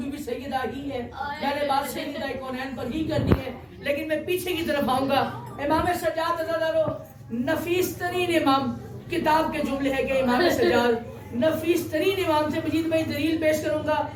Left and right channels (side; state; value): both; identical; correlation 1.00